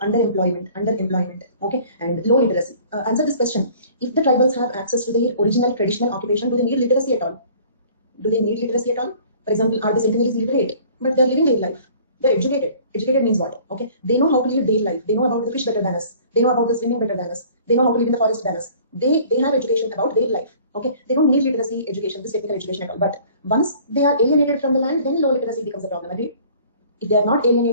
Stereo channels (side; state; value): both; inverted; correlation -0.51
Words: Okay, and low literacy. Answer this question: if the tribals have access to their original traditional occupation, do they need literacy at all? Do they need literacy at all? For example, are the centennials literate? But they're living their life. They're educated. Educated means what? Okay, they know how to live their life. They know about the fish better than us. They know about the swimming better than us. They know how to live in the forest than us. They have education about their life. Okay, they don't need literacy education, this technical education at all. But once they are alienated from the land, then low literacy becomes a problem. Agreed? If they are not